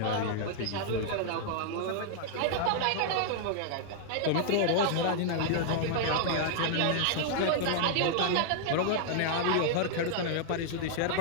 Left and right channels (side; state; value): both; different; correlation 0.00